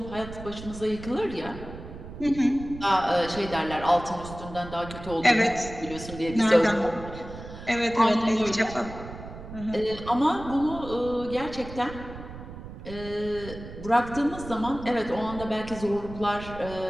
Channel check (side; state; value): right; noise; rumble, 12 dB below the sound